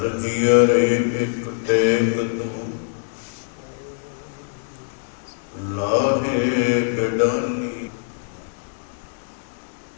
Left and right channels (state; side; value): silent; right; 63 dB below the other